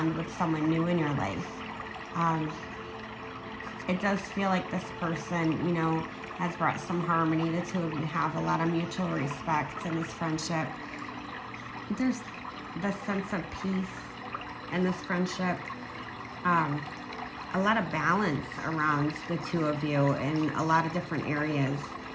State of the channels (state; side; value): identical; both; correlation 1.00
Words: with someone new in your life. It does feel like this person, has brought some harmony. The two of you have a lot of mutual respect in this friendship. There's this sense of peace in this friendship. A lot of balance around the two of you in a lot of different areas.